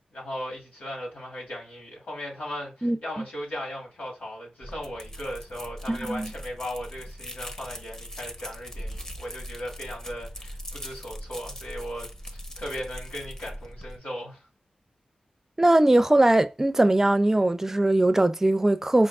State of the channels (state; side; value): normal; both; correlation 0.97